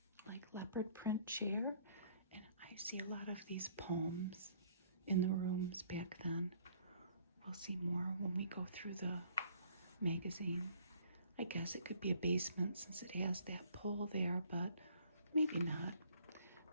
leopard print chair. And I see a lot of these poems in the rooms back then. We'll see more when we go through the magazine. I guess it could be a basement since it has that pole there, but maybe not.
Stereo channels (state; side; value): inverted; both; correlation -0.59